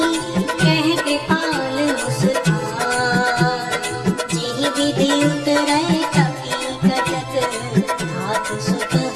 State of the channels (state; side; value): identical; both; correlation 1.00